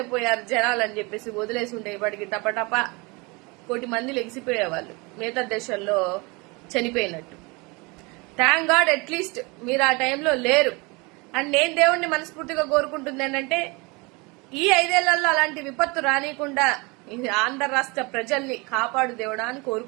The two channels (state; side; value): quieter; left; 27.2 dB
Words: పోయారు జనాలు అని చెప్పేసి వదిలేసి ఉంటే ఇప్పటికి టపటప 1 కోటి మంది లెగిసిపోయేవాళ్ళు మిగతా దేశాల్లో చనిపోయినట్టు. థ్యాంక్ గాడ్ అట్లీస్ట్ మీరు ఆ టైంలో లేరు. అండ్ నేను దేవుణ్ణి మనస్ఫూర్తిగా కోరుకుంటుంది ఏంటంటే ఈ 5 ఏళ్లలో అలాంటి విపత్తు రానియకుండా ఆంధ్ర రాష్ట్ర ప్రజల్ని కాపాడు దేవుడా అని